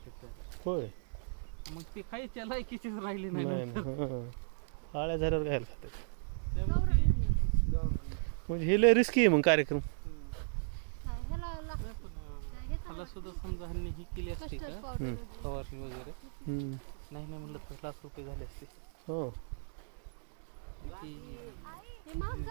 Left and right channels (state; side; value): silent; left; digital silence